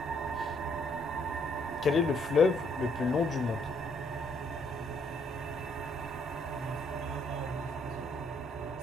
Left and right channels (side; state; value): both; normal; correlation 0.69